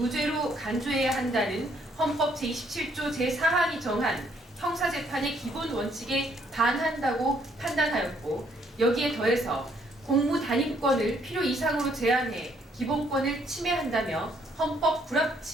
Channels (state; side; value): normal; both; correlation 0.68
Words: 간주해야 한다는 헌법 제27조 제4항이 정한 형사재판의 기본 원칙에 반한다고 판단하였고, 여기에 더해서 공무단임권을 필요 이상으로 제한해 기본권을 침해한다며 헌법